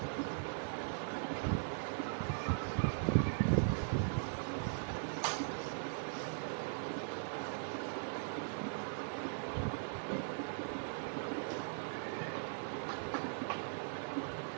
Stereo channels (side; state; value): left; silent; digital silence